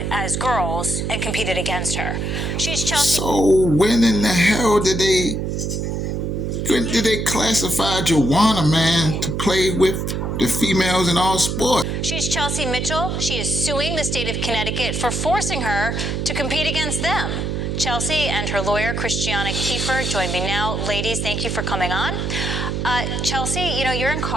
as girls and competed against her. She's Chelsea. So when in the hell did they classify Joanna, man, to play with the females in all sports? She's Chelsea Mitchell. She is suing the state of Connecticut for forcing her to compete against them. Chelsea and her lawyer, Christiana Kiefer, join me now. Ladies, thank you for coming on. Chelsea, you know, you're in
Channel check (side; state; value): right; noise; hum, 2 dB below the sound